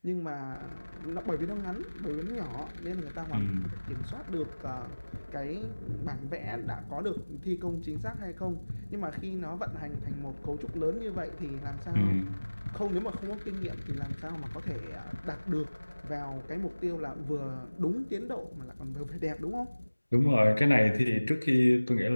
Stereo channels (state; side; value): inverted; both; correlation -1.00